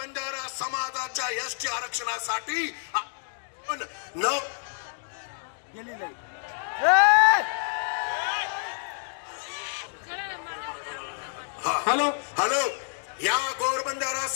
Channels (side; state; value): right; silent; 59 dB below the other